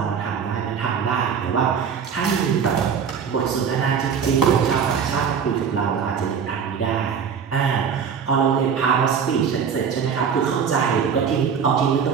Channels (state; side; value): quieter; left; 6.9 dB